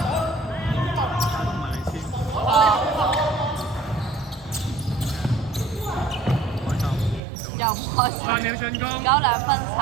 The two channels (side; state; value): left; drops out; at 7.2 s